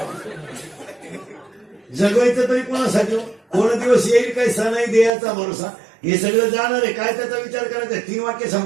जगवायचं तरी कोणासाठी? कोण दिवस येईल काही सण आहे देयाचा भरोसा. हे सगळं जाणार आहे. काय त्याचा विचार करायचा? 3 वाक्य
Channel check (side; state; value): left; drops out; at 5.1 s